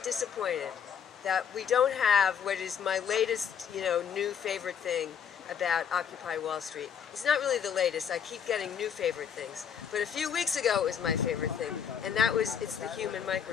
disappointed that we don't have what is my latest, new favorite thing about Occupy Wall Street. It's not really the latest. I keep getting new favorite things. But a few weeks ago it was my favorite thing, and that was it's the human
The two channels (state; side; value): quieter; right; 7.7 dB